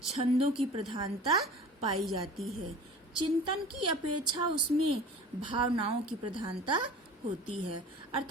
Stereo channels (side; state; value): both; normal; correlation 0.40